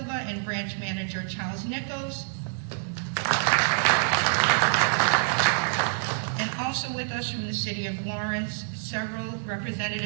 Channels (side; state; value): left; silent; 57 dB below the other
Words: and Branch Manager Charles Nichols. And also with us from the City of Lawrence, several